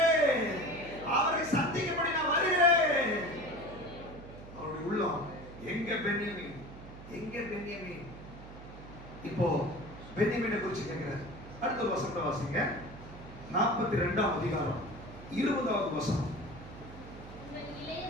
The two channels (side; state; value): right; noise; hum, 15 dB below the sound